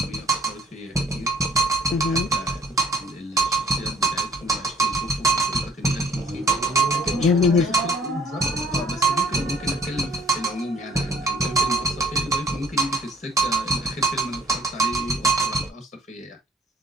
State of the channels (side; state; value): both; normal; correlation 0.56